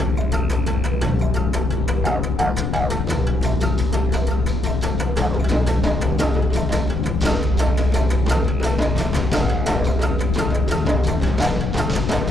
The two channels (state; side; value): noise; left; rumble, 2 dB below the sound